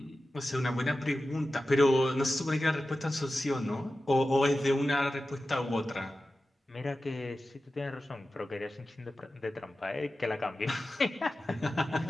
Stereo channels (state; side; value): normal; both; correlation 0.94